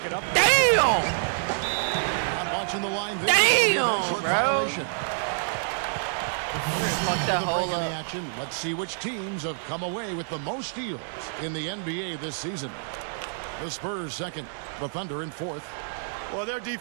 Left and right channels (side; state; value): left; silent; digital silence